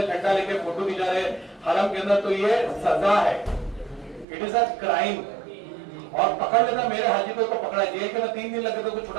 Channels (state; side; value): drops out; left; at 4.2 s